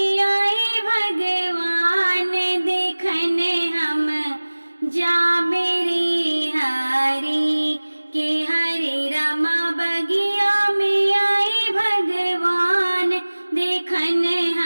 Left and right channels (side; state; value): both; inverted; correlation -1.00